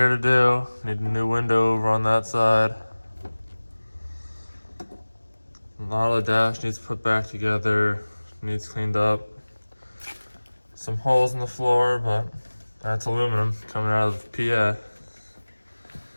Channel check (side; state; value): both; inverted; correlation -1.00